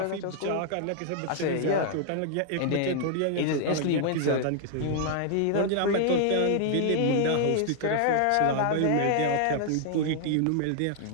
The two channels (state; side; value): different; both; correlation -0.01